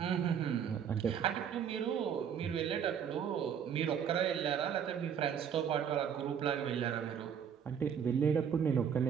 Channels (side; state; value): left; quieter; 8.0 dB